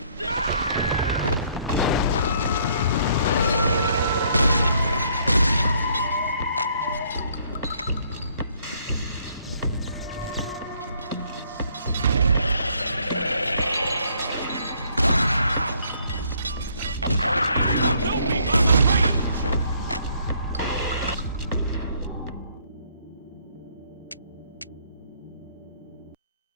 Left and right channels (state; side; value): inverted; both; correlation -0.65